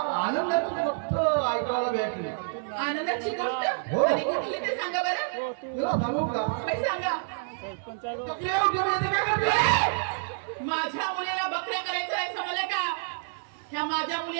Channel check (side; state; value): left; silent; digital silence